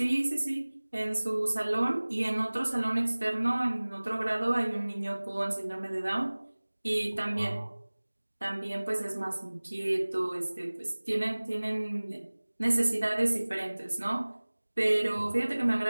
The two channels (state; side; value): inverted; both; correlation -1.00